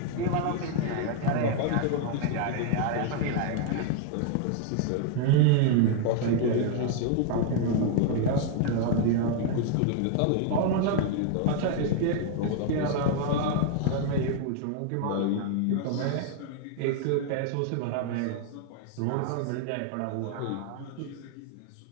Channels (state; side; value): different; both; correlation 0.00